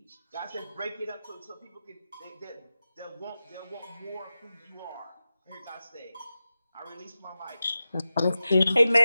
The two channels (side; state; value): both; inverted; correlation -0.93